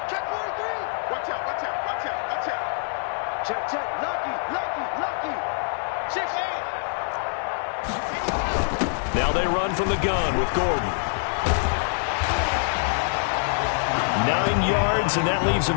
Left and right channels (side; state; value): right; silent; 62 dB below the other